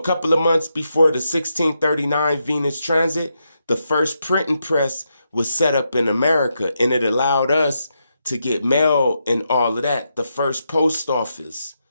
couple of months before the 1639 Venus transit, the first printing press was set up in America, and it allowed us to get mail and all of that. The first post office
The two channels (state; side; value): inverted; both; correlation -0.83